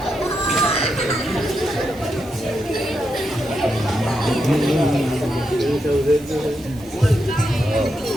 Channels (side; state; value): right; noise; hiss, 24 dB below the sound